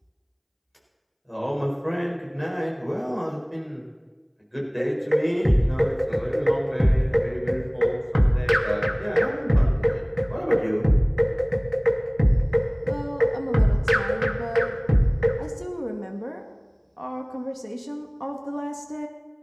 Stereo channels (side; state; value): both; identical; correlation 1.00